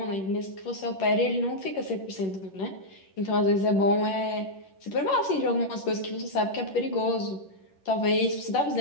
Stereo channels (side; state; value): right; late; 11 ms